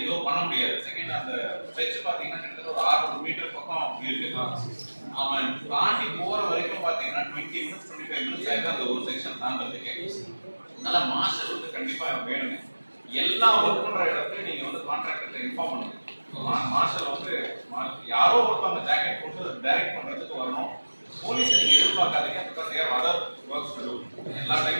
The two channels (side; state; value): both; inverted; correlation -1.00